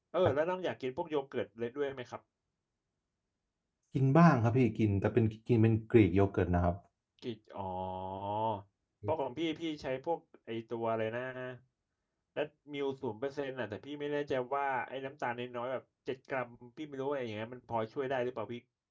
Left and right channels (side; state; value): both; identical; correlation 1.00